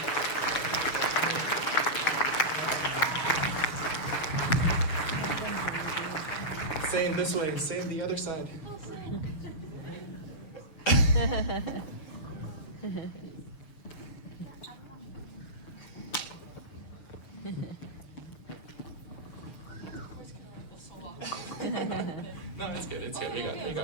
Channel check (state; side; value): late; right; 7.0 ms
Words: Same this way, same the other side. No, it's good, it's good. We